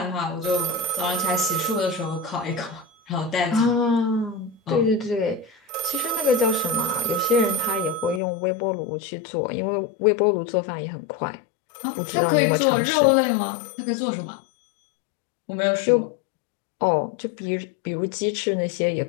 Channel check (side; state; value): right; drops out; at 8.2 s